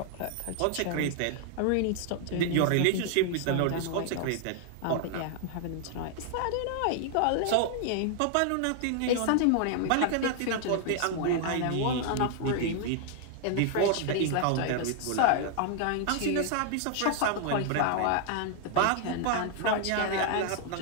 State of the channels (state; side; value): different; both; correlation 0.00